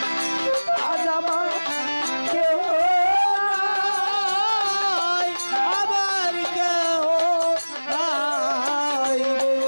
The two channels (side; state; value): both; inverted; correlation -1.00